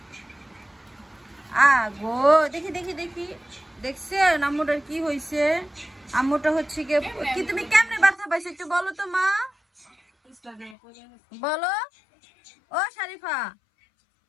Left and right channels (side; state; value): right; drops out; at 10.8 s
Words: গো দেখি দেখছে আম্মুটার কি হয়েছে আম্মুটা হচ্ছে কি তুমি কেমনে ব্যথা পাইছো একটু বলো তো মা বলো ও শারিফা